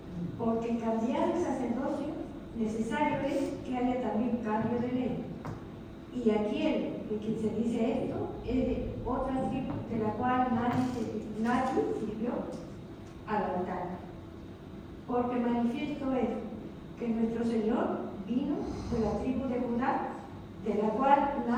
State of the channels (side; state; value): both; identical; correlation 1.00